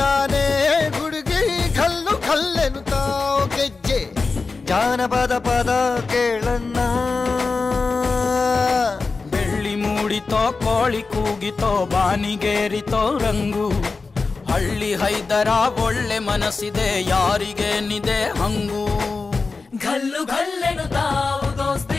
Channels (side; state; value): right; quieter; 4.2 dB